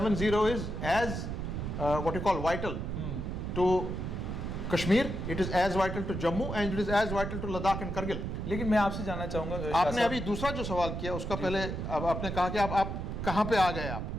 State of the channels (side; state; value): right; noise; rumble, 4 dB below the sound